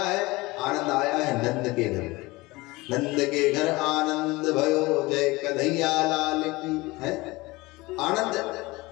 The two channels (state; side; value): quieter; right; 21.9 dB